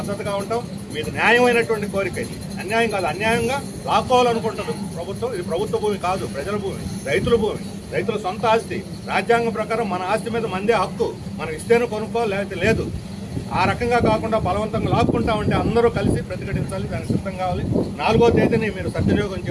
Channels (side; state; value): both; identical; correlation 1.00